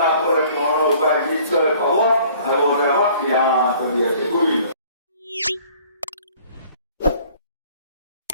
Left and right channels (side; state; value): both; inverted; correlation -0.54